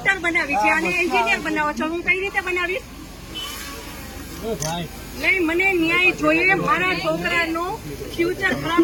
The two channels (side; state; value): both; identical; correlation 1.00